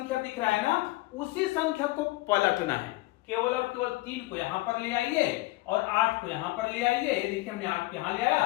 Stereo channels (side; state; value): right; quieter; 19.9 dB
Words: दिख रहा है ना, उसी संख्या को पलटना है। केवल और केवल 3 को यहां पर ले आइए और 8 को यहां पर ले आइए। देखिए हमने 8 को यहां ले आया।